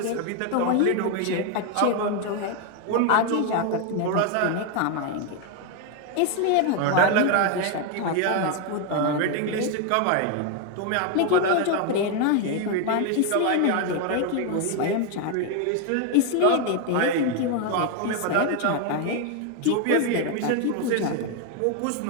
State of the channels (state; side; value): different; both; correlation 0.01